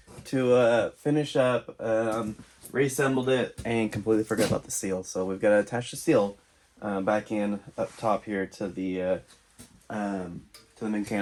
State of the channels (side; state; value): both; identical; correlation 1.00